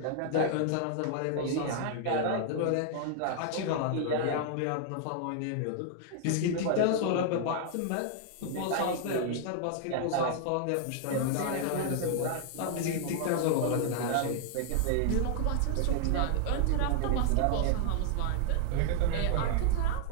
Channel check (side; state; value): both; different; correlation 0.00